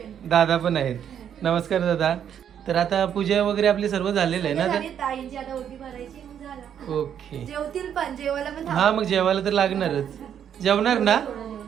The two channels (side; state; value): left; quieter; 9.0 dB